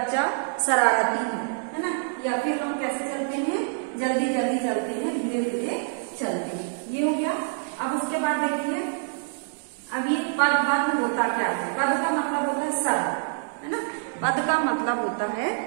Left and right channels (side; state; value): left; silent; digital silence